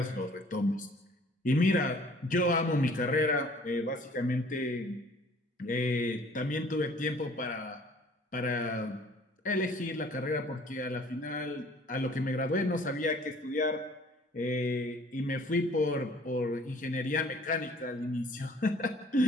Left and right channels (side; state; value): both; normal; correlation 0.54